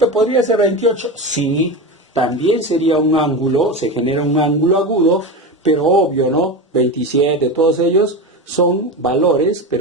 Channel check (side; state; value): both; normal; correlation 0.22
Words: ¿podría ser 28? Sí, también sería un ángulo, se genera un ángulo agudo, pero obvio, ¿no? 27, todos ellos son valores,